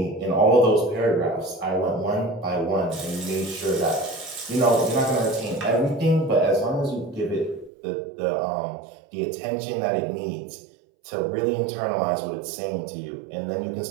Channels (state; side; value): drops out; left; at 7.7 s